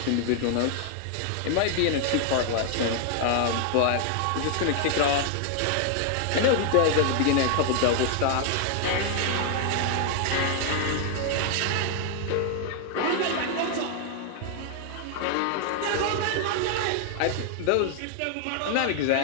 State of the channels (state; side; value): different; both; correlation 0.00